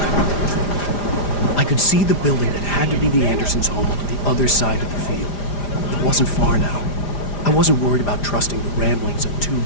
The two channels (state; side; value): late; right; 5.0 ms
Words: I could see the building that had to be the Andersons' home on the other side of the field. It wasn't far now. I wasn't worried about trusting the ramblings of two